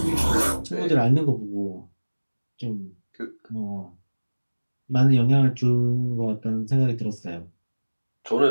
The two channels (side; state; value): both; inverted; correlation -1.00